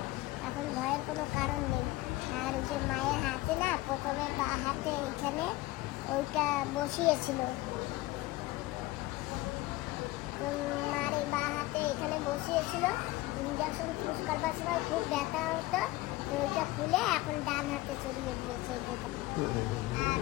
এখন ভয়ের কোনো কারণ নেই। আর ওই যে মায়ের হাতে না, প্রথমে বা হাতে এখানে ওইটা বসিয়েছিল, তো মার এই বা হাতে এখানে বসিয়েছিল, ইঞ্জেকশন চুজ করবার সময় খুব ব্যথা হতো, তো ওইটা খুলে এখন ডান হাতে চড়িয়ে দিয়েছে। আর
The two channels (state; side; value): quieter; right; 19.2 dB